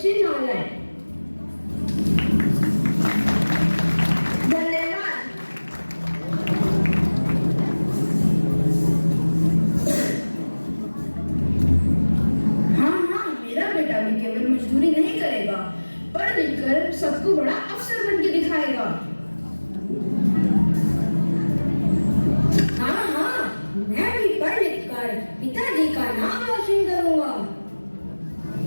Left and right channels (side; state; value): both; inverted; correlation -1.00